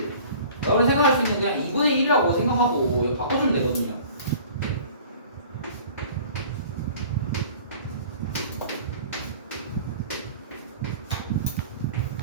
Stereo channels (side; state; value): both; inverted; correlation -0.47